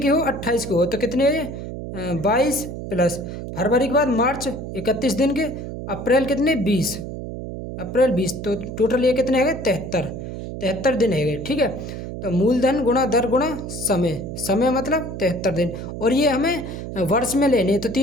हो? 28 की हो, तो कितने 22 प्लस फरवरी के बाद मार्च 31 दिन के, अप्रैल कितने 20, अप्रैल 20, तो टोटल ये कितने है? 73 दिन है। ठीक है, तो मूलधन गुणा दर गुणा समय मतलब 73 दिन। और ये हमें वर्ष में लेने, तो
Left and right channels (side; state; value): right; noise; hum, 8 dB below the sound